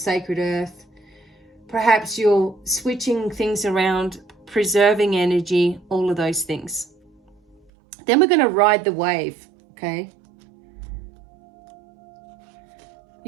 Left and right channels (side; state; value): left; drops out; at 7.6 s